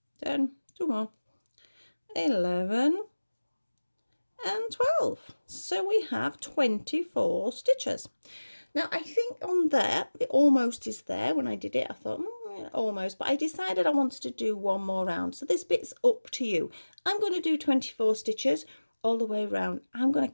10, 2 more, 11, and 12. So we have 24 stitches. Now I think on there, it almost is there. When I did it, I thought, almost, but I decided I wanted to do one more round. So this bit's up to you. I'm going to do 24 stitches all the way around. I'm going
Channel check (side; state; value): both; inverted; correlation -1.00